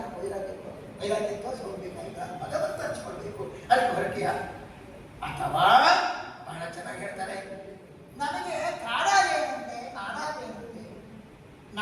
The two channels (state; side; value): identical; both; correlation 1.00